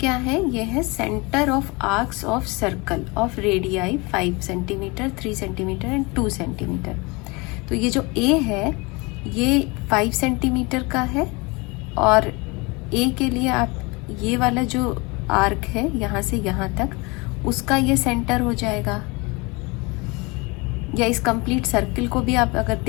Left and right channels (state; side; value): quieter; right; 26.6 dB